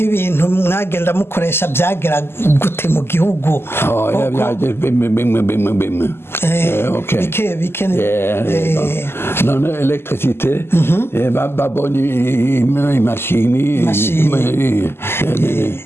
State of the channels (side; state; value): right; late; 0.12 ms